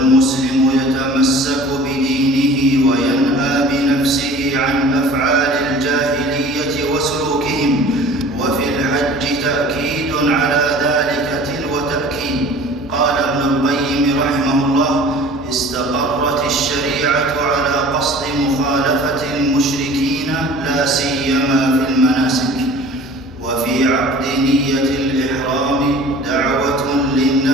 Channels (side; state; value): both; normal; correlation 0.45